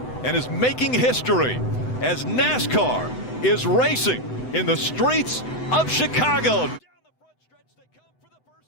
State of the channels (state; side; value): late; right; 7.9 ms